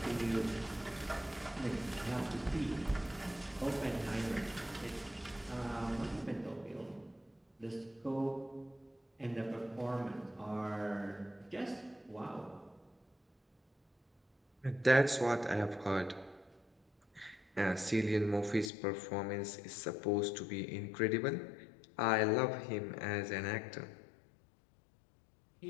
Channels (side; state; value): right; drops out; at 18.7 s